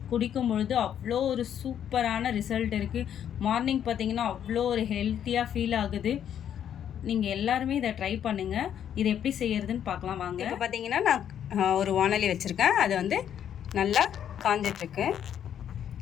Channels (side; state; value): right; quieter; 9.5 dB